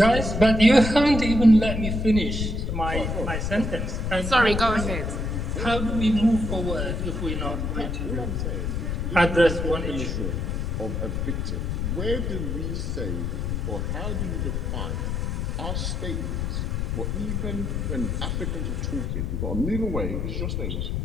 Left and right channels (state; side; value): noise; left; rumble, 1 dB below the sound